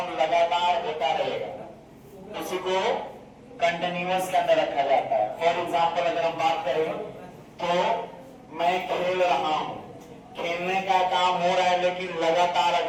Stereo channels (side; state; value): both; identical; correlation 1.00